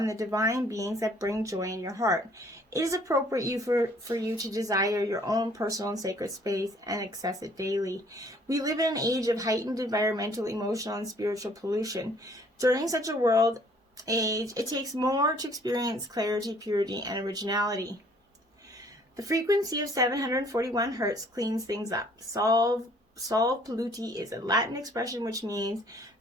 the divine beings that bring joy in your heart. It is appropriate for you to desire your own personal and sacred space and access it daily. We live in an age of heightened environmental, emotional, and spiritual pollution. During such a world age, it takes more to experience clarity, purity, and originality. The frequency of 741 Hertz cleans things up. Sol Polluti is a Latin expression which means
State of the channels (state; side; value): normal; both; correlation 0.59